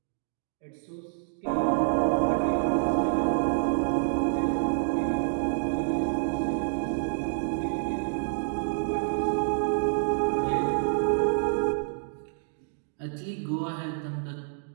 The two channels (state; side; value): silent; left; digital silence